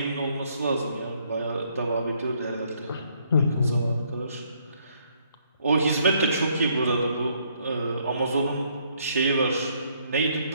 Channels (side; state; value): both; inverted; correlation -0.68